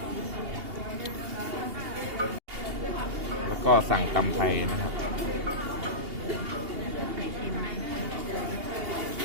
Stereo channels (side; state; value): left; late; 2.8 ms